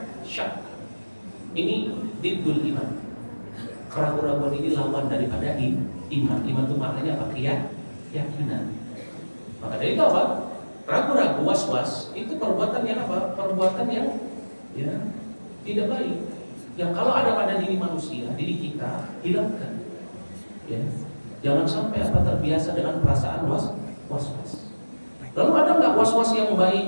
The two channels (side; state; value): both; inverted; correlation -1.00